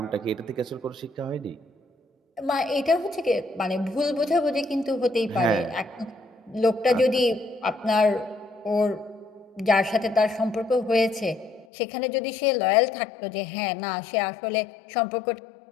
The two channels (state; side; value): drops out; right; at 11.7 s